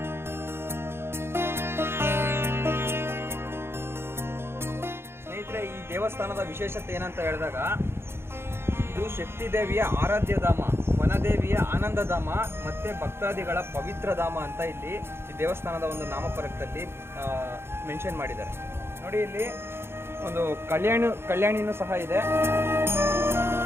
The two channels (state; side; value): late; left; 0.12 ms